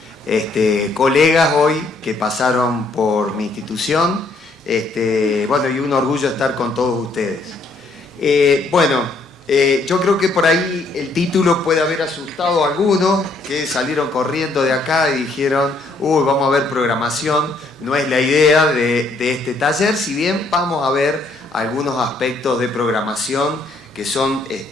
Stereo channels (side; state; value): right; quieter; 3.1 dB